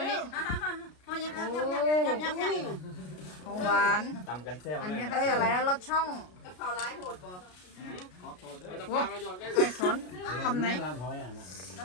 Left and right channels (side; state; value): right; late; 33 ms